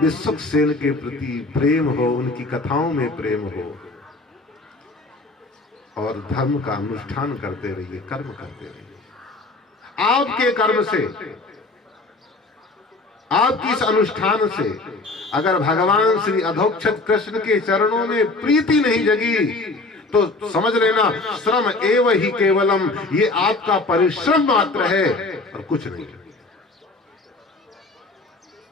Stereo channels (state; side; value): quieter; right; 3.3 dB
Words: के प्रति प्रेम हो, उनकी कथाओं में प्रेम हो और धर्म का अनुष्ठान करते रहिए, कर्म करते रहिए। आपके कर्म से, आपकी इस अनुष्ठान से अगर भगवान श्री अधोक्षज कृष्ण के चरणों में प्रीति नहीं जगी तो समझ लेना श्रम एव ही केवलम, ये आपका परिश्रम मात्र है और कुछ नहीं।